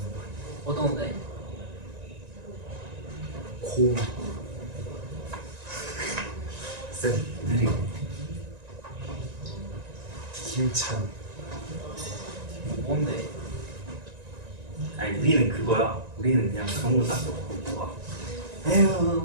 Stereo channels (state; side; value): late; left; 1.9 ms